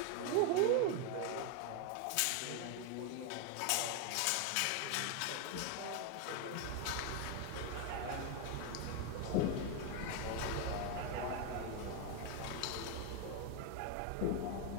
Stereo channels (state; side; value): different; both; correlation 0.01